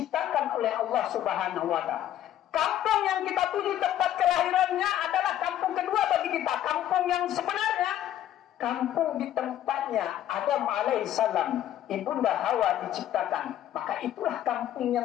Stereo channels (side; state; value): right; quieter; 11.8 dB